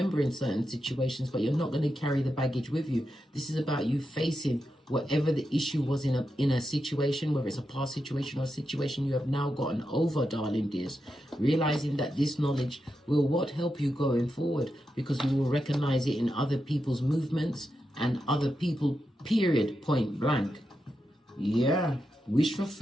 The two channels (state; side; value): normal; both; correlation 0.87